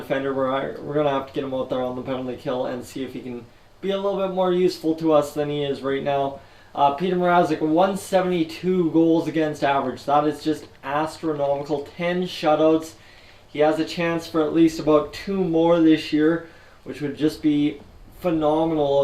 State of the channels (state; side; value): identical; both; correlation 1.00